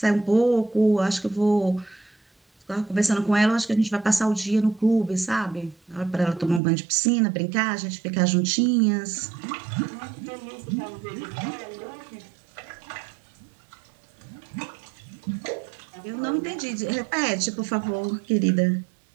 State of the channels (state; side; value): drops out; left; at 6.6 s